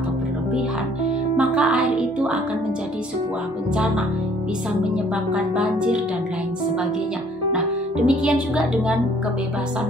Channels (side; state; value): both; normal; correlation 0.59